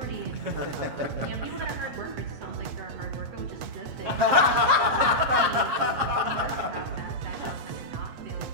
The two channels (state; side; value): late; left; 7.5 ms